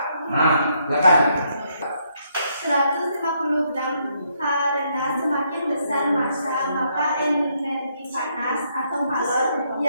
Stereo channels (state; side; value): inverted; both; correlation -0.73